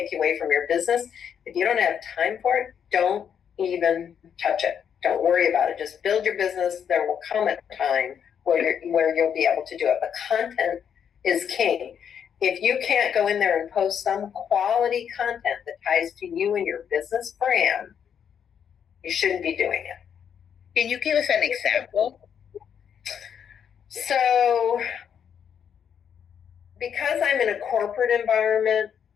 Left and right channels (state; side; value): quieter; right; 8.1 dB